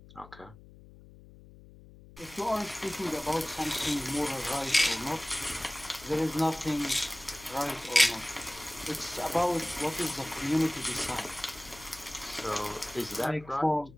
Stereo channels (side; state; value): left; noise; hum, 20 dB below the sound